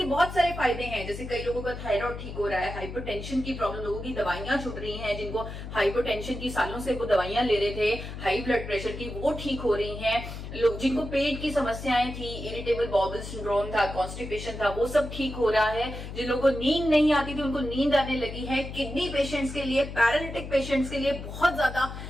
बहुत सारे फायदे हैं, जैसे कई लोगों का थायराइड ठीक हो रहा है, हाइपरटेंशन की प्रॉब्लम, लोगों की दवाइयां छूट रही हैं, जिनको हाइपरटेंशन की सालों से वो दवाइयां ले रहे थे, हाई ब्लड प्रेशर की, वो ठीक हो रही हैं। लोग जिनको पेट की समस्याएं थी, इरिटेबल बाउल सिंड्रोम था, कॉन्स्टिपेशन था, वो सब ठीक हो रहा है। जिन लोगों को नींद नहीं आती थी उनको नींद आने लगी है। किडनी पेशेंट्स के लिए, पैरालिटिक पेशेंट्स के लिए बहुत ज्यादा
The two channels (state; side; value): noise; left; hum, 9 dB below the sound